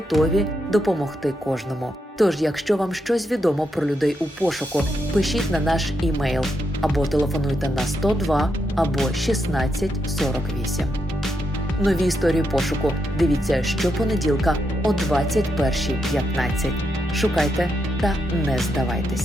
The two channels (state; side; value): normal; both; correlation 0.82